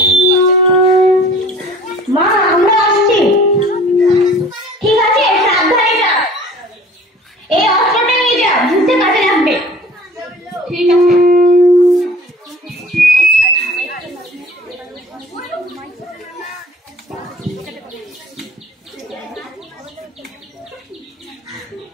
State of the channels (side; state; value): both; normal; correlation 0.47